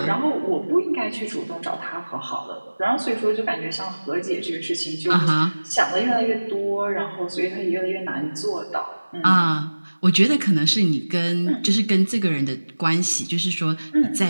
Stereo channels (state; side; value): inverted; both; correlation -1.00